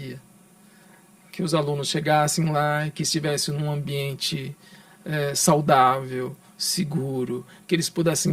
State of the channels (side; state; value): both; identical; correlation 1.00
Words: Que os alunos chegassem lá, que estivessem num ambiente saudável, seguro, que eles pudessem